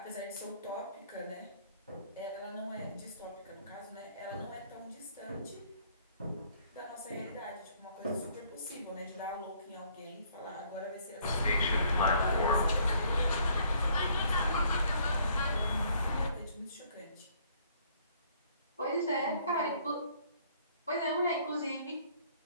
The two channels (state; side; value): inverted; both; correlation -0.62